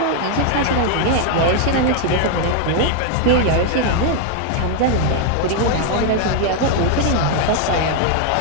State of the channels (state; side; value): different; both; correlation 0.00